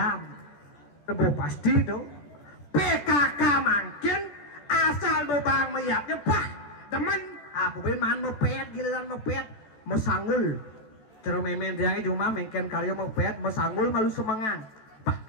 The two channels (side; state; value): right; late; 14 ms